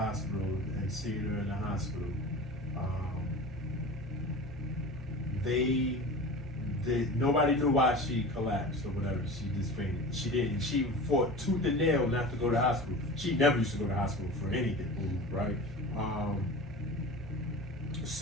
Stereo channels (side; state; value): both; normal; correlation 0.34